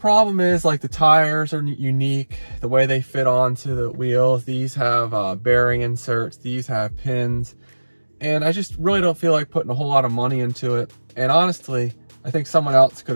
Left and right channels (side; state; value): both; inverted; correlation -1.00